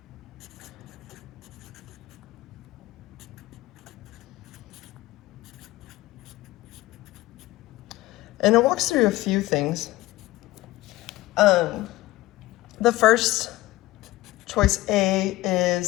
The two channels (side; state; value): right; quieter; 17.8 dB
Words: And it walks through a few things. The first, choice A,